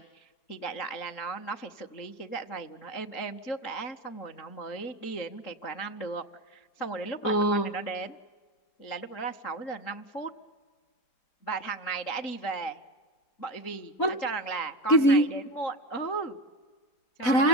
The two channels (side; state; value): right; late; 4.1 ms